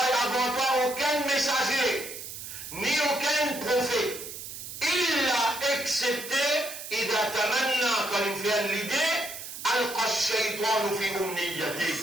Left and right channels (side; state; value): right; noise; hiss, 10 dB below the sound